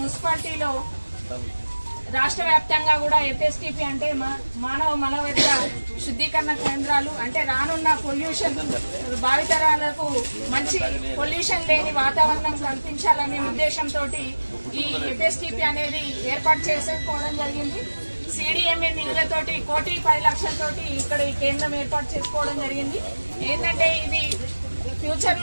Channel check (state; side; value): inverted; both; correlation -1.00